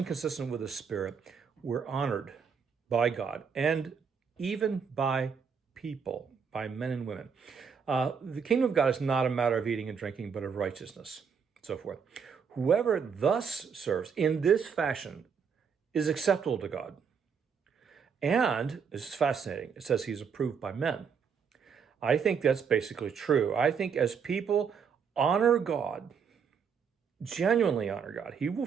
consistent with the Spirit, we're honored by God and even by people, by men and women. The kingdom of God is not a matter of eating and drinking, but of righteousness, so forth. Whoever thus serves in this fashion is acceptable to God. And this is fascinating. It says he's approved by men. I think that's basically true. I think as people honor God, genuinely honor God, he will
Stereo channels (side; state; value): left; quieter; 6.5 dB